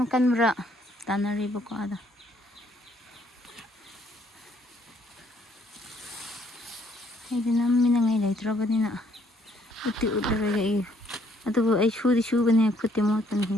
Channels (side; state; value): both; normal; correlation 0.66